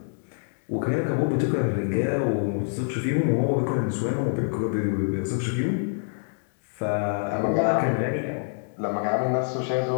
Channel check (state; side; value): silent; right; digital silence